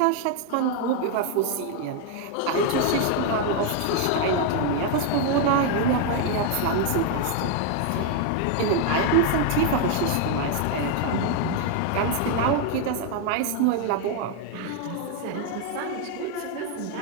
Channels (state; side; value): different; both; correlation 0.00